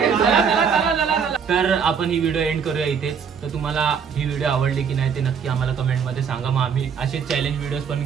तर आपण ही व्हिडिओ एंड करूया इथेच. तर तुम्हाला ही व्हिडिओ आवडली की नाही ते नक्की आम्हाला कमेंट मध्ये सांगा. मग आम्ही असे चॅलेंज व्हिडिओज पण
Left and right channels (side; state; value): left; quieter; 6.7 dB